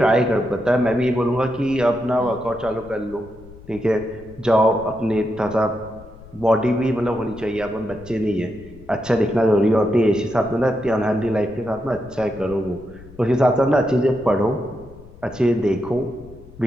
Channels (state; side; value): noise; left; rumble, 20 dB below the sound